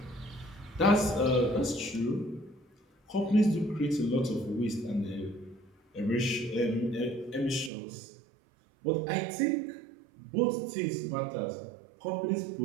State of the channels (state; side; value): drops out; left; at 7.7 s